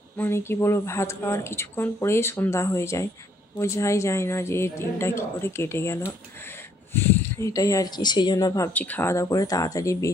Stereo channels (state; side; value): normal; both; correlation 0.67